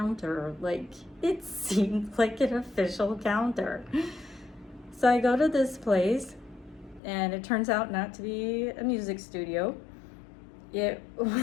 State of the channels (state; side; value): drops out; right; at 7.0 s